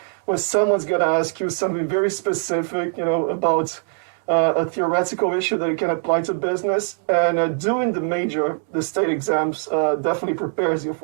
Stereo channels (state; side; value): silent; left; digital silence